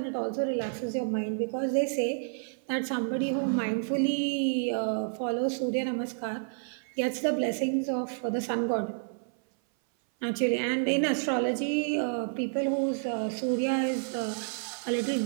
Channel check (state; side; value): silent; left; 57 dB below the other